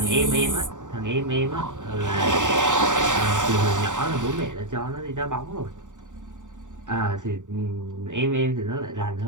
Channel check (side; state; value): left; late; 0.86 ms